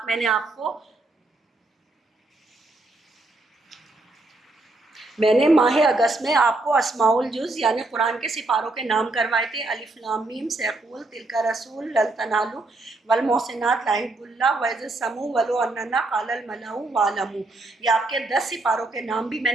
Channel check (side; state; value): left; quieter; 3.0 dB